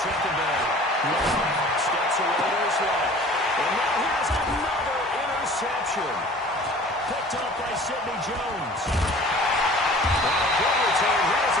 second down. Steps away to his left. And now here's another interception. Picked up by Sidney Jones. Good return here as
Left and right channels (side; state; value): both; normal; correlation 0.46